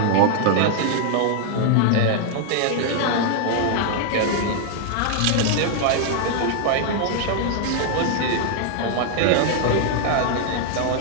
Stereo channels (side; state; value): both; different; correlation 0.00